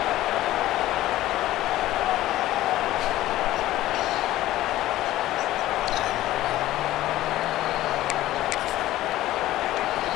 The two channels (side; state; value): right; quieter; 15.2 dB